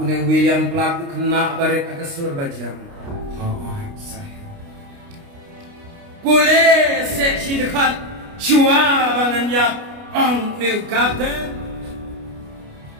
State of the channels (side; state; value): left; late; 29 ms